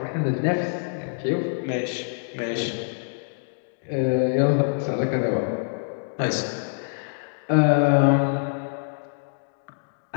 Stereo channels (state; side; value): silent; right; digital silence